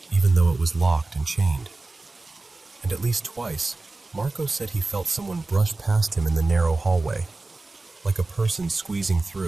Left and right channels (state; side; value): quieter; left; 3.3 dB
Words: even though it was locked and chained. And at least twice, Marco said he felt someone brush past him in the narrow hallway, like a person squeezing